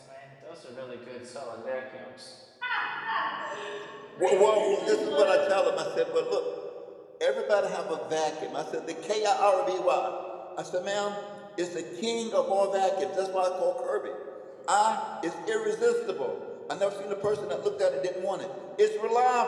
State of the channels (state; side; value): identical; both; correlation 1.00